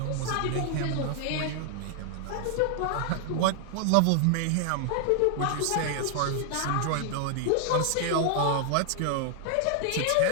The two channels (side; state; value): both; different; correlation 0.00